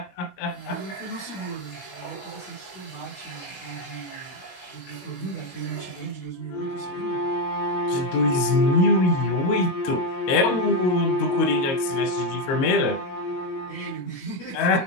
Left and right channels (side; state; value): right; late; 22 ms